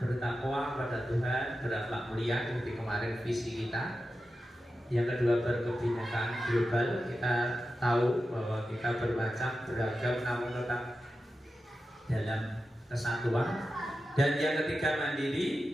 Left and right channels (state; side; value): normal; both; correlation 0.91